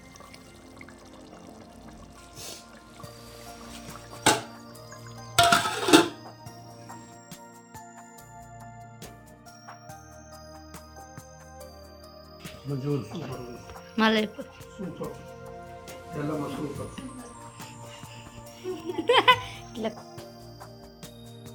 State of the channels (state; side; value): identical; both; correlation 1.00